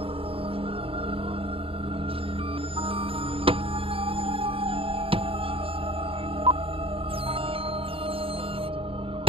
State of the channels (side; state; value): left; late; 0.27 ms